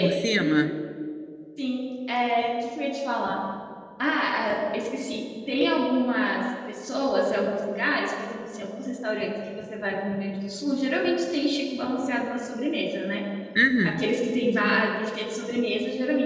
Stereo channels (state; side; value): identical; both; correlation 1.00